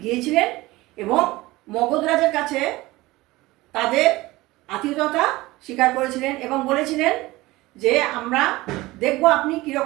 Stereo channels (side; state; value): left; quieter; 19.6 dB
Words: গিয়েছিলেন এবং মগধ রাজের কাছে তাদের আতিথ্যতা স্বীকার করেছিলেন এবং বলেছিলেন যে আমরা দেখব আপনি